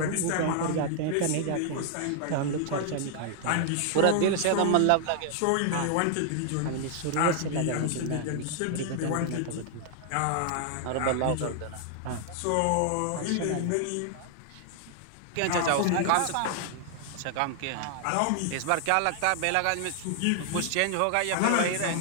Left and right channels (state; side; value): different; both; correlation 0.00